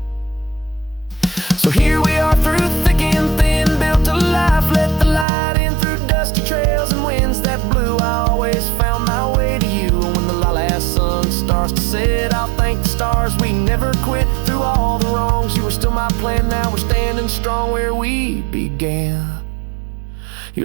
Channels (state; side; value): drops out; left; at 5.2 s